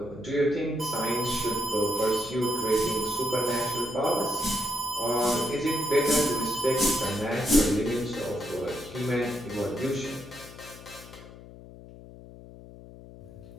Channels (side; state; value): left; noise; hum, 17 dB below the sound